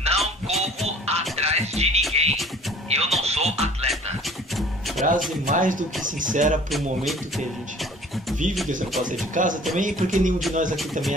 corro atrás de ninguém. Eu não sou atleta. Frase mais do que sincera para o momento que a gente vive, que você não pode sair de casa também, porque nenhum de nós aqui também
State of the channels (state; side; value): normal; both; correlation 0.50